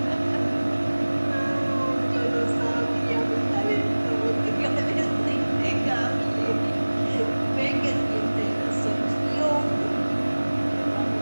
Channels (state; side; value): inverted; both; correlation -1.00